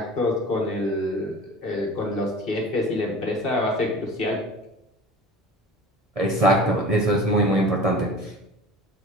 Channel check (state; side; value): normal; both; correlation 0.40